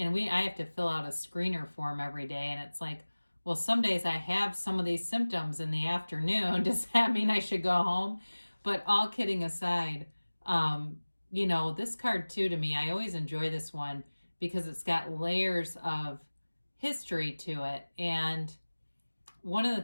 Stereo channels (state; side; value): inverted; both; correlation -1.00